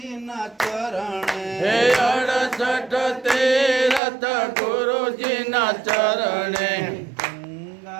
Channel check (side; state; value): left; drops out; at 4.0 s